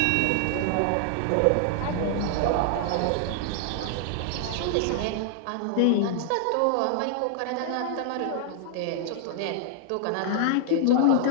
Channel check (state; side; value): different; both; correlation -0.01